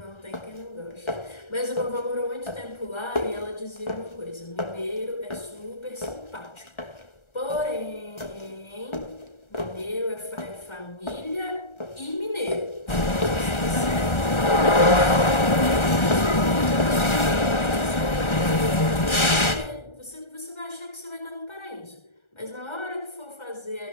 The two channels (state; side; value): late; right; 1.4 ms